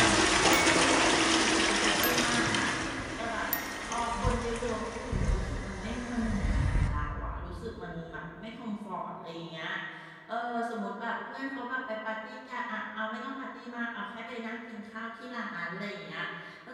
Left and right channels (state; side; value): identical; both; correlation 1.00